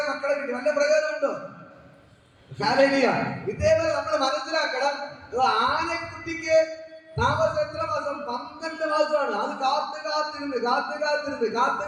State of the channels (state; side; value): identical; both; correlation 1.00